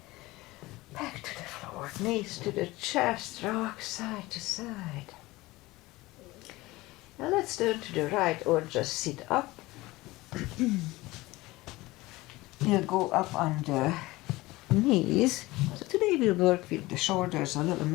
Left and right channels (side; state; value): right; quieter; 20.0 dB